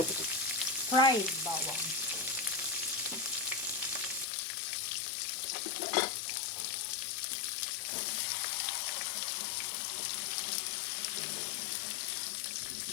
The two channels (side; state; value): right; drops out; at 4.2 s